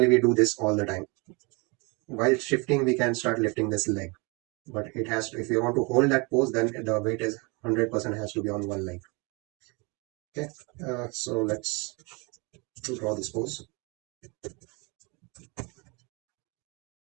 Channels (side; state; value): left; quieter; 29.1 dB